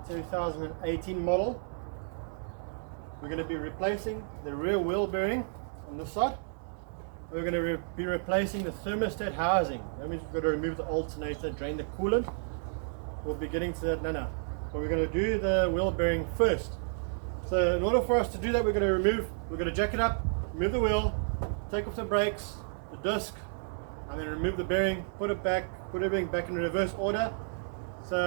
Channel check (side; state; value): left; silent; 57 dB below the other